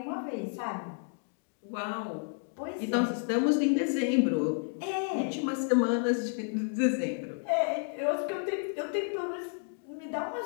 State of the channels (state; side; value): silent; right; 57 dB below the other